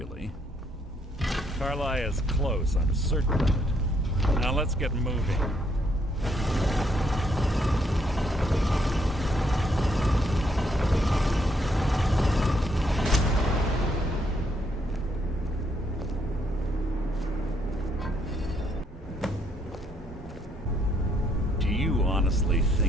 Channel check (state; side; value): normal; both; correlation 0.72